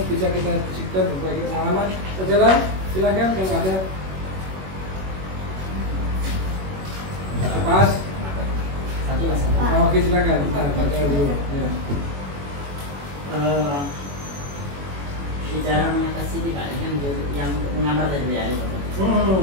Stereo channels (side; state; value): left; late; 21 ms